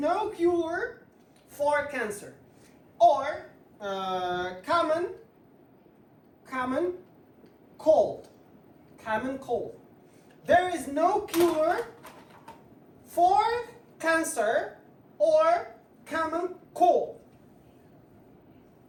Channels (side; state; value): both; identical; correlation 1.00